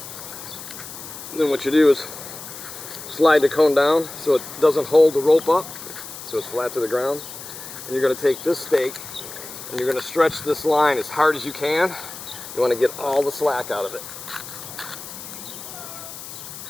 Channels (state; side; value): noise; left; hiss, 12 dB below the sound